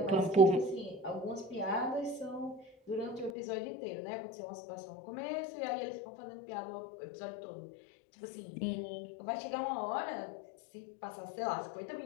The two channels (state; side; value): drops out; right; at 3.3 s